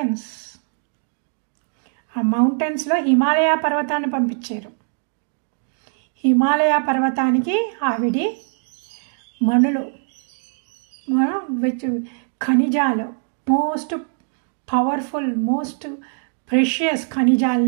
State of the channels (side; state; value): left; silent; 64 dB below the other